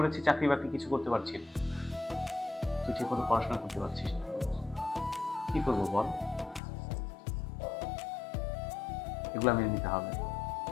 চাকরি বাকরি কিছু করতে পারছি না। তুই ঠিক মতো পড়াশোনা করতে পারছিস না, কি করবো বল? এগুলো মেনে নিতে হবে।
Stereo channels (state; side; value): drops out; right; at 6.6 s